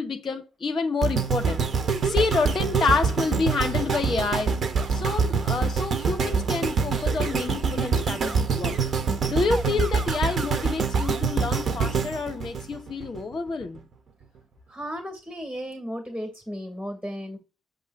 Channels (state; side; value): normal; both; correlation 0.69